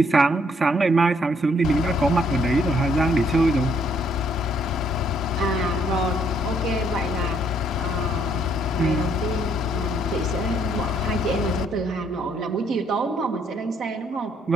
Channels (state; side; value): normal; both; correlation 0.68